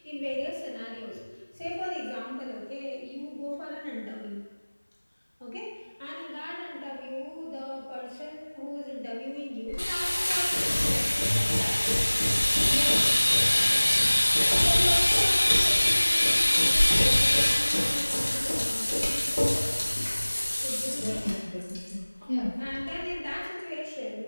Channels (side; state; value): both; inverted; correlation -1.00